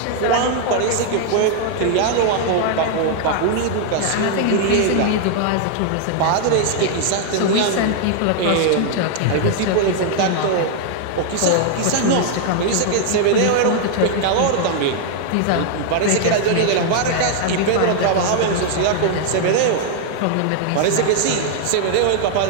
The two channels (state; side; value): different; both; correlation 0.00